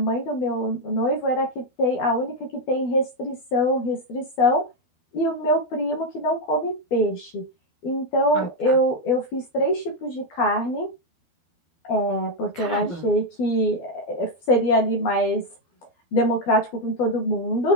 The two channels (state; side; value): late; right; 12 ms